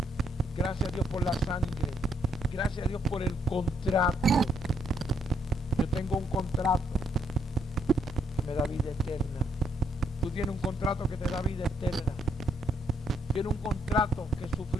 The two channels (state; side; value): normal; both; correlation 0.73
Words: Gracias a Dios por la sangre. Gracias a Dios por el contrato. Yo tengo un contrato que me da vida eterna. Tú tienes un contrato que te da vida eterna. Tienes un contrato que